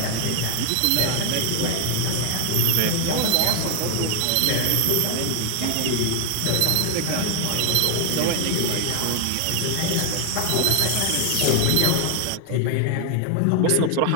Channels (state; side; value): different; both; correlation 0.00